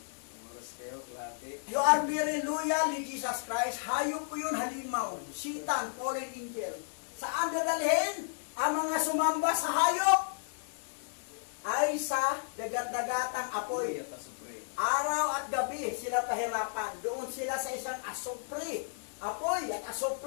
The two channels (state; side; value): silent; right; digital silence